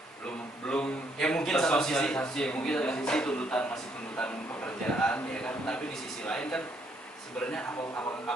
belum Ya mungkin satu sisi tersosialisasi, mungkin satu sisi tuntutan masih tuntutan pekerjaan ya kan, tapi di sisi lain kan sebenarnya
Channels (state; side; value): normal; both; correlation 0.71